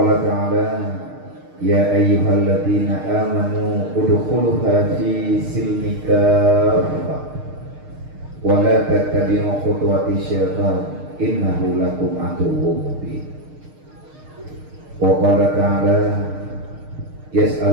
ta'ala ya ayyuhalladzina amanu udkhuluha fi silmi kaffah wa la tattabi'u khutuwati syaitan innahu lakum aduwwun mubin. Wa qala ta'ala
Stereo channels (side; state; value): left; late; 6.5 ms